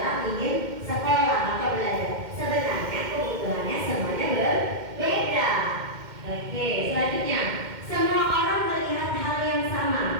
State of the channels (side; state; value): left; late; 2.1 ms